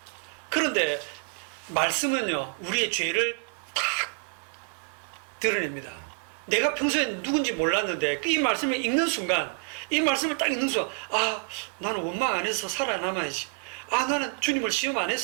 그런데 말씀은요 우리의 죄를 딱 드러냅니다. 내가 평소에 누군지 몰랐는데 이 말씀을 읽는 순간 이 말씀을 딱 읽는 순간 아 나는 원망 안 해서 살아남아야지. 아 나는 주님을 시험 안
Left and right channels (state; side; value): quieter; left; 37.0 dB